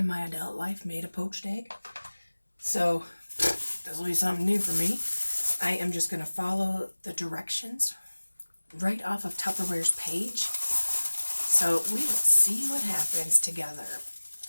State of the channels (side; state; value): both; inverted; correlation -1.00